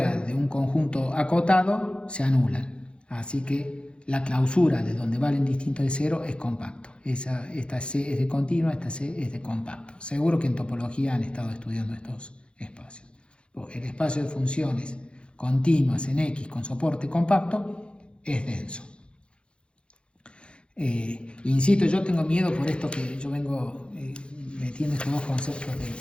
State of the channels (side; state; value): right; late; 0.056 ms